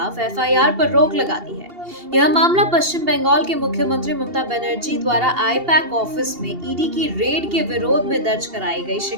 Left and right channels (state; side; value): late; left; 2.8 ms